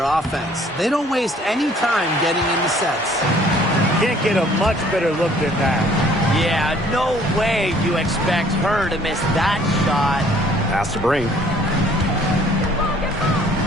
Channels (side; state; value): both; normal; correlation 0.58